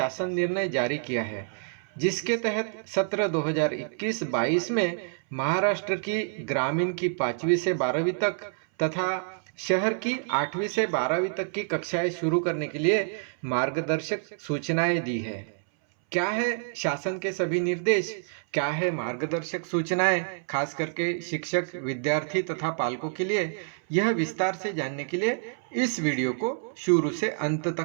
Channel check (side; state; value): left; silent; 60 dB below the other